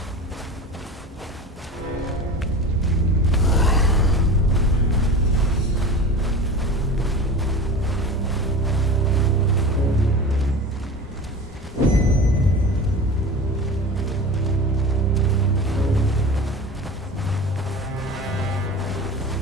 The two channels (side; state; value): both; normal; correlation 0.33